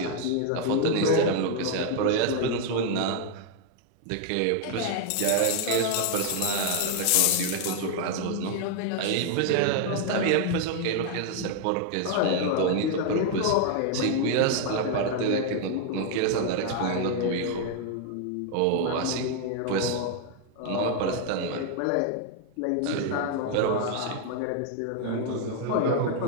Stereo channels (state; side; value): different; both; correlation 0.00